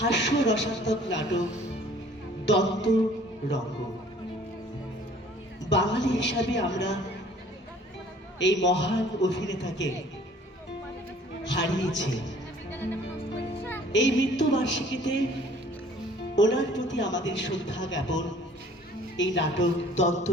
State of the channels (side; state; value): both; normal; correlation 0.54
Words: নাটক দন্ত রঙ্গ। বাঙালি হিসাবে আমরা এই মহান অভিনেতাকে হারিয়েছি। এই মৃত্যুবার্ষিকীতে ওনার প্রতি আমাদের শ্রদ্ধা জ্ঞাপন এই নাটক দন্ত